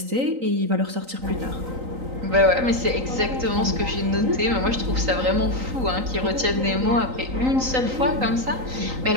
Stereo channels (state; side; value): late; left; 3.9 ms